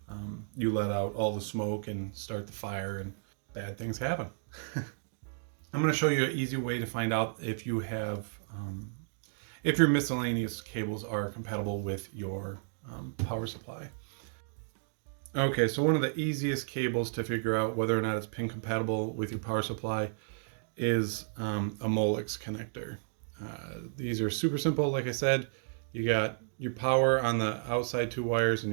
you let out all the smoke and start the fire and bad things happen. I'm going to show you an easy way to find out if you have, if your miscellaneous cables are compatible with your power supply. Okay, so one of the easiest cables to figure out whether or not it's pin compatible with your power supply is a Molex connector. These are super simple. Like I said, you got your power on the outside 2 wires and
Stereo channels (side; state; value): left; silent; digital silence